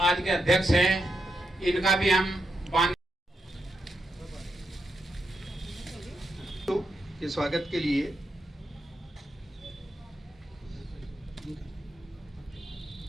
के अध्यक्ष हैं, इनका भी हम के स्वागत के लिए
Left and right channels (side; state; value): both; normal; correlation 0.84